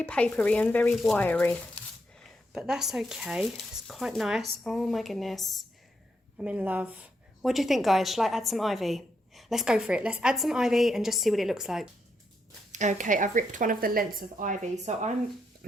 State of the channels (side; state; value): both; normal; correlation 0.80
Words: very wiry. But that's okay. It's quite nice. Oh my goodness. I'm in love. What do you think, guys? Shall I add some ivy? Let's go for it. Let's add some ivy and just see what it looks like. Okay, I've ripped one of the lengths of ivy. So